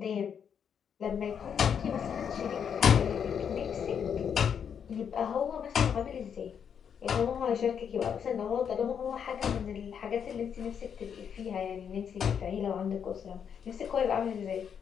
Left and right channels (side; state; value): right; quieter; 7.7 dB